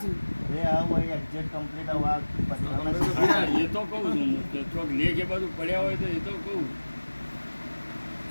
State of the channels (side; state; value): both; inverted; correlation -1.00